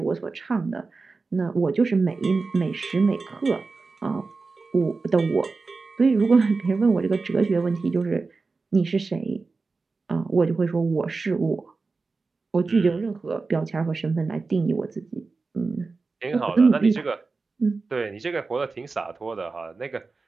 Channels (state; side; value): quieter; left; 4.1 dB